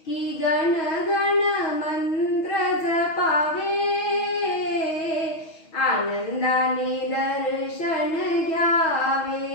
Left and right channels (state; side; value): late; right; 6.2 ms